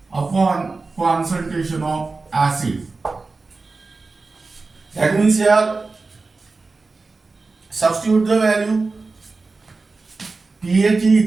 upon concentration of acid. That means here substitute the value. pH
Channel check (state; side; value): quieter; left; 3.9 dB